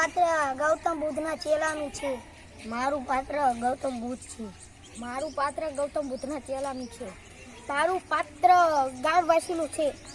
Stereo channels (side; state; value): both; identical; correlation 1.00